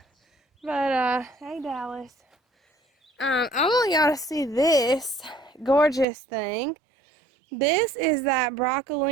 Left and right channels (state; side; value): drops out; left; at 6.1 s